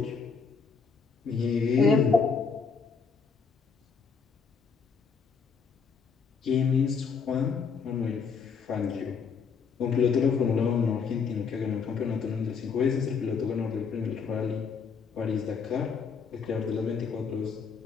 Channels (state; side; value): quieter; right; 5.7 dB